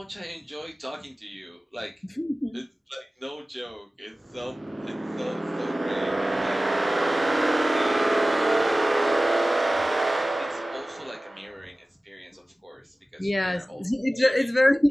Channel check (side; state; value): both; normal; correlation 0.96